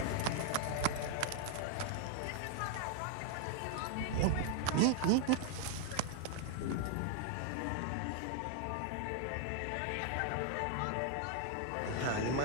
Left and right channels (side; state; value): both; different; correlation 0.00